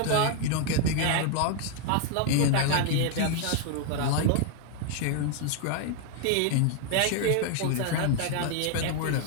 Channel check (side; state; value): both; different; correlation 0.00